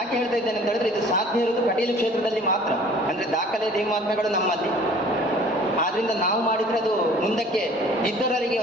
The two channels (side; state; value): both; normal; correlation 0.50